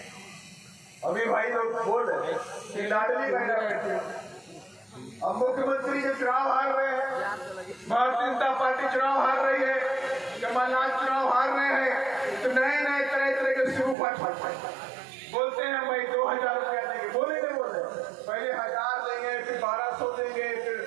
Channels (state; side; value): drops out; left; at 14.0 s